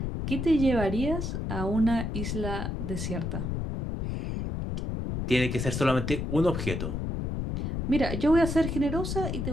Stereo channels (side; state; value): left; noise; rumble, 3 dB below the sound